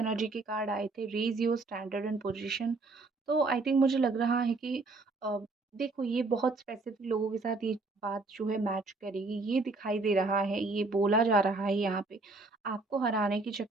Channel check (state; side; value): quieter; left; 3.5 dB